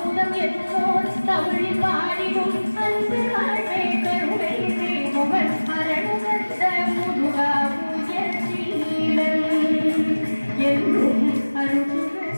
என்னோர் தமிழில் பாடிடும் அன்பு வாழ்வை கருணை செய்பவன் அரணுகந்த முருகா உயர்சீலன் என்றும்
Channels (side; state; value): both; inverted; correlation -1.00